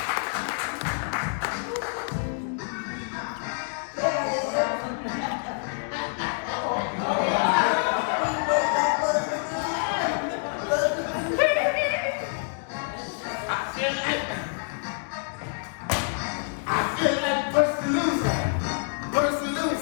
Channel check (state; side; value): silent; right; 60 dB below the other